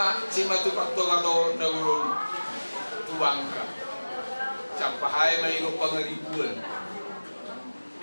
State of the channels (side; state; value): both; inverted; correlation -1.00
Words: simatu faktor atau nagurun tuangka. Capai mainu pengeribuan.